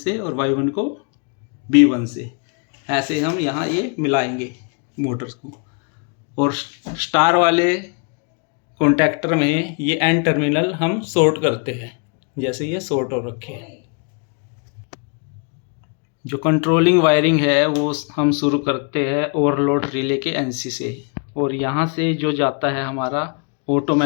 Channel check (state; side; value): quieter; right; 38.8 dB